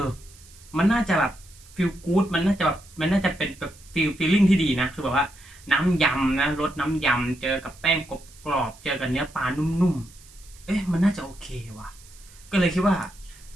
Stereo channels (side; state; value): right; noise; hiss, 23 dB below the sound